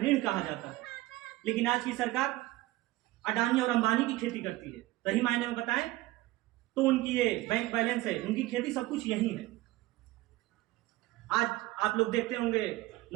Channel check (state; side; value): quieter; left; 18.0 dB